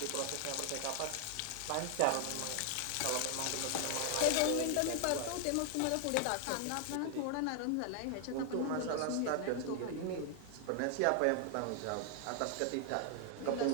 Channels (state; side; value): different; both; correlation 0.00